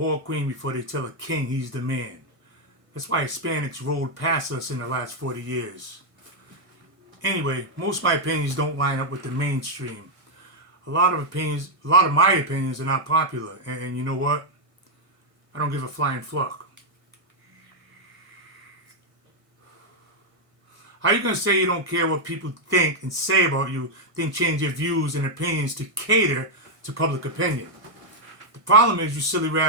queen before they tell a king he's the man. That's why Hispanics rolled past us in the last 40 years. Anyway, most of my opinions don't line up with the mainstream. A lot of my opinions are not popular. And you know what? I don't give a flying fuck. How are you going to say you don't care what people think and say about you, then change your views and opinions to cater to public opinion? The problem is you silly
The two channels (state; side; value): late; left; 1.5 ms